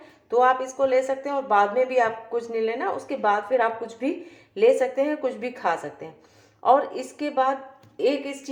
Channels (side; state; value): both; identical; correlation 1.00